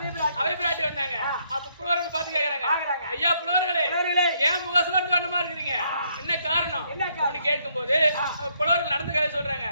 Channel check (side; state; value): both; inverted; correlation -0.71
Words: அபய பிராட்டி வந்தாங்க. அப்ப புலவர்கள் பார்த்து கேக்குறாங்க, ஐயா புலவர்களே, ஏன் முகசோர்ந்த வண்ணமா இருக்கிறீங்க? என்ன காரணம் அப்படின்னு கேட்கும் போது புலவர்கள் நடந்த கதை சொல்றாங்க.